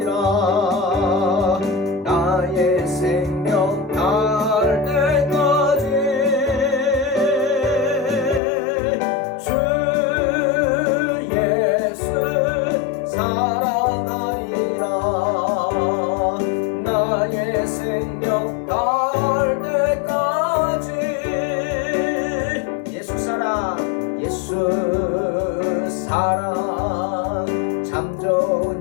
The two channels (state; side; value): drops out; right; at 8.4 s